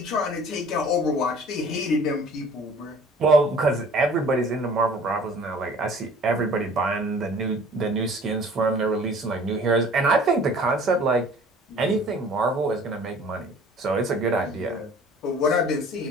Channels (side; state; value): both; normal; correlation 0.49